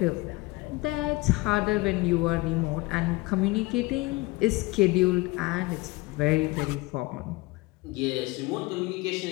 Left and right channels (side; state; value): right; quieter; 22.4 dB